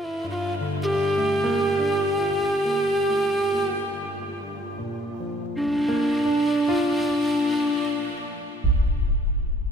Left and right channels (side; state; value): both; normal; correlation 0.63